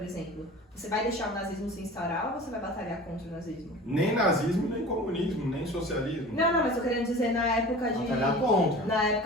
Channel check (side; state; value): both; normal; correlation 0.39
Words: exemplo. Você vai deixar o nazismo se instaurar ou você vai batalhar contra o nazismo? Nem nazismo, nem comunismo, nem socialismo. Não, mas eu querendo dizer na época de... Batalhar contra. Na